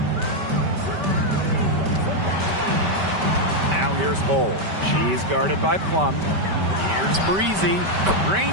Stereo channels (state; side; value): late; left; 5.2 ms